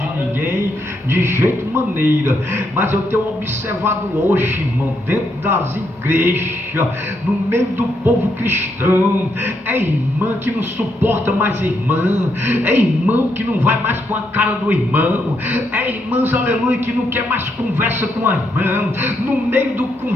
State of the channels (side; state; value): both; normal; correlation 0.78